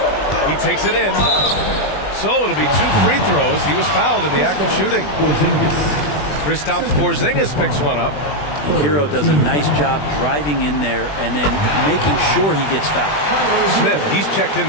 He takes it in. So it'll be 2 free throws. He was fouled in the act of shooting. Kristaps Porzingis picks one up. And Hero does a nice job driving in there and then making sure he gets fouled. Smith, he's checked in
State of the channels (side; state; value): right; late; 20 ms